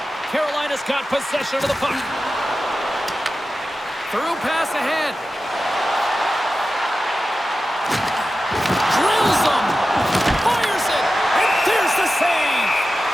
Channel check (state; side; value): normal; both; correlation 0.93